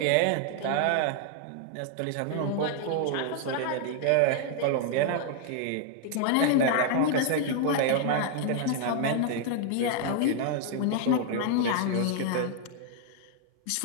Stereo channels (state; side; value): different; both; correlation 0.00